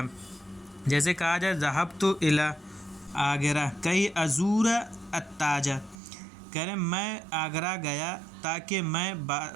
जैसे कहा जाए ज़हबतु इला आगरा कई अज़ूरा अत्ताजा, कह रहे मैं आगरा गया ताकि मैं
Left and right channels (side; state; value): left; drops out; at 6.0 s